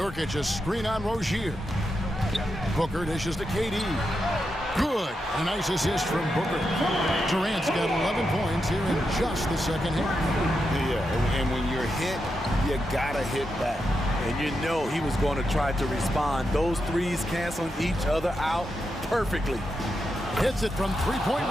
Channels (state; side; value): normal; both; correlation 0.86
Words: a screen on Rozier. Booker dishes to KD. Good. A nice assist from Booker. Durant's got 11 points here in just the second half. Yeah, and when you're hit, you gotta hit back. And you know he was going to try to respond. Those threes canceling each other out perfectly. Hits it from three-point